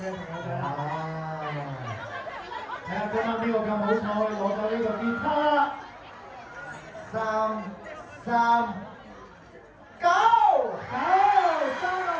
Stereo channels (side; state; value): both; identical; correlation 1.00